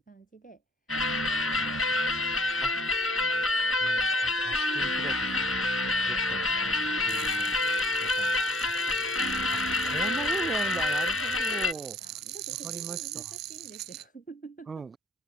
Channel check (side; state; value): both; normal; correlation 0.55